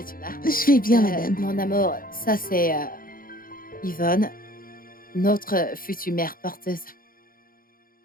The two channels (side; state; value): right; late; 0.42 ms